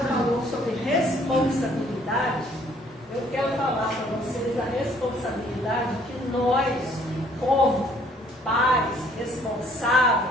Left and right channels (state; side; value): normal; both; correlation 0.61